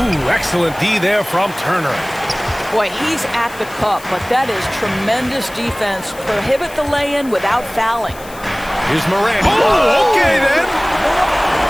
excellent D there from Turner. Boy, he's at the cup, but that is tremendous defense. Prohibit the lay-in without fouling. Here's Morant. Oh, okay then.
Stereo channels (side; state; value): left; noise; hiss, 19 dB below the sound